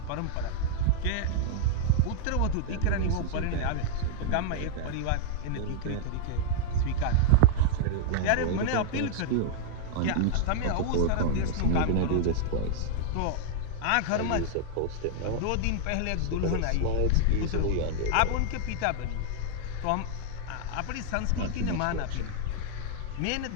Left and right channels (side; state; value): both; different; correlation -0.01